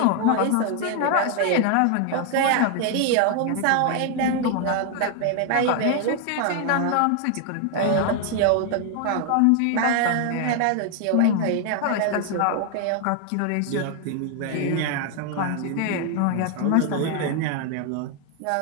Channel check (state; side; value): different; both; correlation 0.00